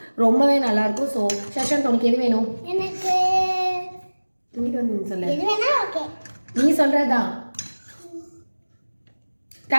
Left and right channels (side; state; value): both; inverted; correlation -1.00